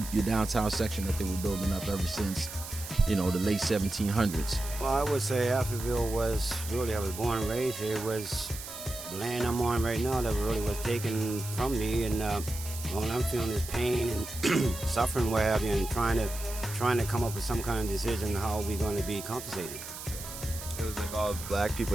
your downtown section that they were building up ever since, the late 1700s. Well, I would say Africville was really, I was born and raised here. It was the land I'm on right now that really was taken from me, and all I'm feeling is pain and suffering, what have you, and trying to come up with some kind of decision how we're going to be compensated. It was like all black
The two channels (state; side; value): noise; right; hiss, 10 dB below the sound